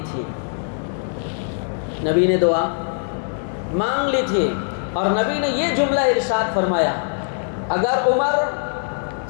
تھی، نبی نے دعا مانگ لی تھی، اور نبی نے یہ جملہ ارشاد فرمایا، اگر عمر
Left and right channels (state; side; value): silent; right; digital silence